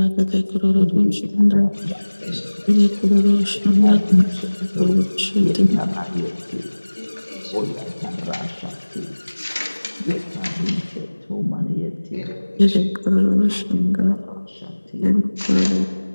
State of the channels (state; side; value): inverted; both; correlation -1.00